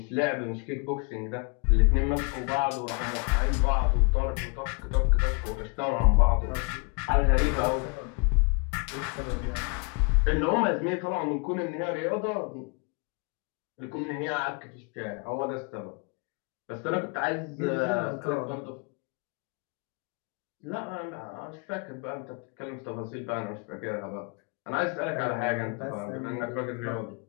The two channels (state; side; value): quieter; right; 33.1 dB